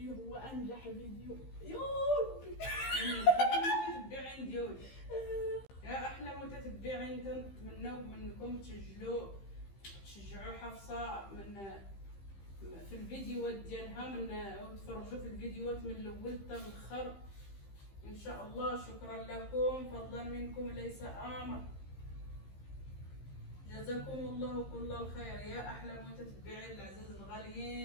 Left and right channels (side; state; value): right; late; 15 ms